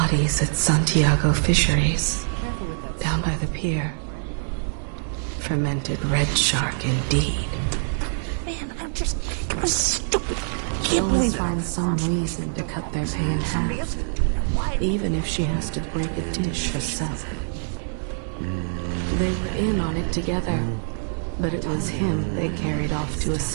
at Santiago Fisheries, down by the pier. Fermented red shark indeed. Can't believe there are some reason to cut their hands, even if she has to break the dish herself. They ate on it together, but it was him they carried off to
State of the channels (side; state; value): left; silent; digital silence